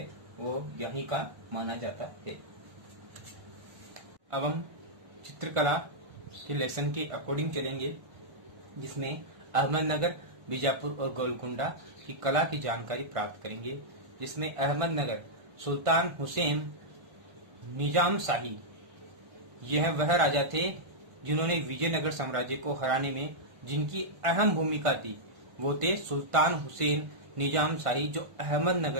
वो यहीं का माना जाता है। अब हम चित्रकला के लेसन के अकॉर्डिंग चलेंगे, जिसमें अहमदनगर, बीजापुर और गोलकुंडा की कला की जानकारी प्राप्त करेंगे। जिसमें अहमदनगर, सुल्तान हुसैन निजाम शाही, यह वह राजा थे जिन्होंने विजयनगर साम्राज्य को हराने में जिनकी अहम भूमिका थी। वो थे सुल्तान हुसैन निजाम शाही, जो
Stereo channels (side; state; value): left; late; 1.5 ms